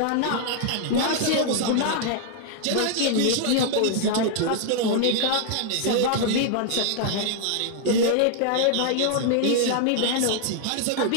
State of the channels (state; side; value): different; both; correlation -0.01